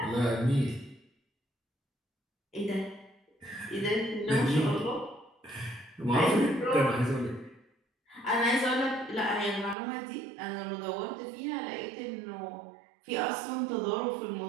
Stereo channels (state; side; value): drops out; left; at 9.8 s